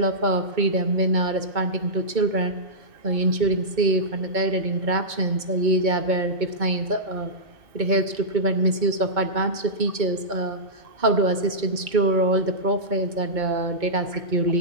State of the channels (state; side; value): late; left; 2.2 ms